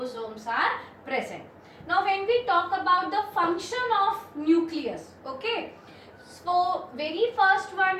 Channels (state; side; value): identical; both; correlation 1.00